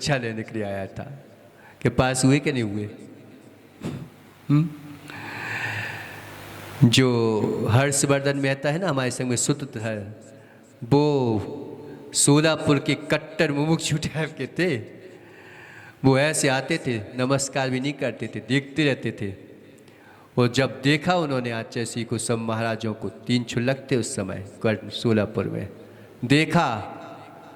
लेने के लिए आया था। कि पास हुए कि नहीं हुए? जो हर्षवर्धन मेहता है ना हमारे संग में सूत्र है, वो सोलापुर के कट्टर मुमुक्षु टाइप के थे। वो ऐसे आते थे, नमस्कार भी नहीं करते थे, देखते रहते थे। और जब देखा उन्होंने आचार्य को, सब महाराजों को, 3 छुलक थे उस समय सोलापुर में, देखा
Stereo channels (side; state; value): both; identical; correlation 1.00